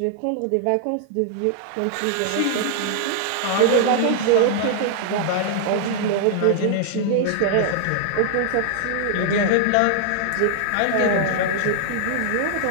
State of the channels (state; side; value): different; both; correlation -0.01